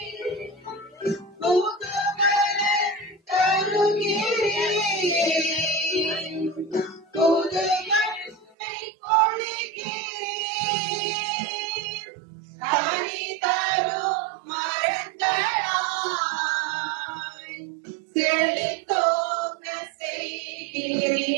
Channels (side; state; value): left; drops out; at 8.6 s